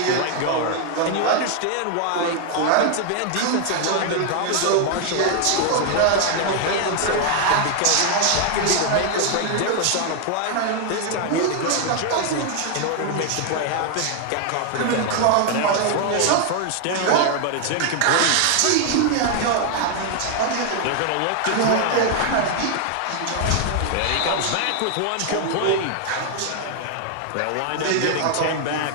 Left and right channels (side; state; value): both; different; correlation 0.00